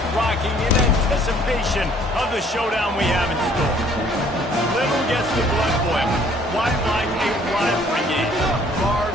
rocking in anticipation of the showdown we have in store. Little gets the blood boiling, quite like a rivalry game.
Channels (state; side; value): normal; both; correlation 0.59